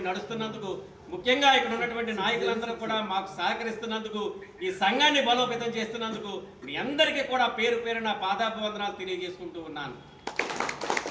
నడుస్తున్నందుకు, ముఖ్యంగా ఇక్కడ ఉన్నటువంటి నాయకులందరూ కూడా మాకు సహకరిస్తున్నందుకు, ఈ సంఘాన్ని బలోపేతం చేస్తున్నందుకు మీ అందరికీ కూడా పేరు పేరున పాదాభివందనాలు తెలియజేసుకుంటూ ఉన్నాను.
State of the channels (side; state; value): both; identical; correlation 1.00